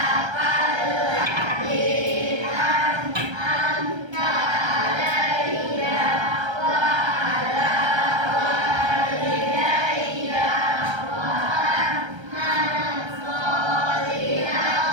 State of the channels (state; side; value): late; left; 1.3 ms